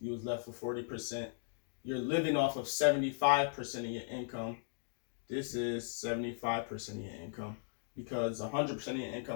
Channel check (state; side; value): silent; right; digital silence